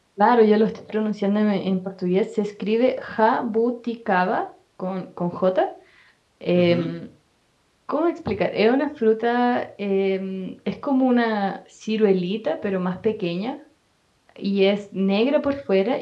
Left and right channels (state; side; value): identical; both; correlation 1.00